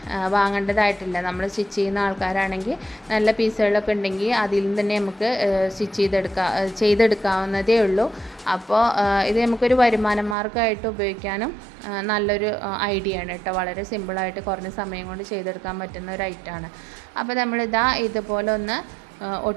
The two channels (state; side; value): drops out; left; at 10.4 s